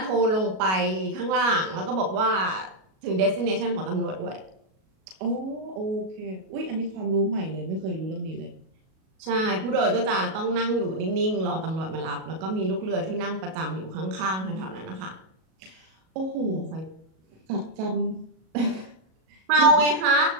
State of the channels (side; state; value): left; late; 37 ms